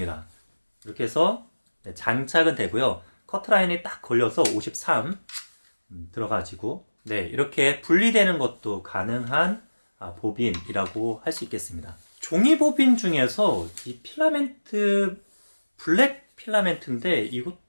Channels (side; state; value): both; inverted; correlation -1.00